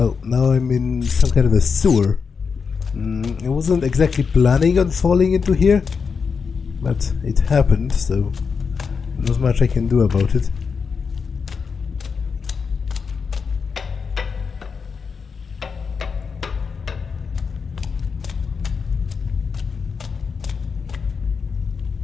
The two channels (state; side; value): quieter; right; 5.6 dB